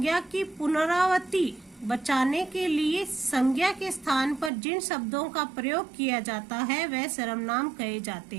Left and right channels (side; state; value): left; drops out; at 4.5 s